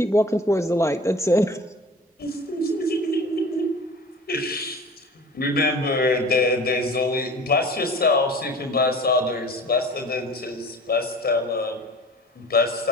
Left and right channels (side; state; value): both; normal; correlation 0.42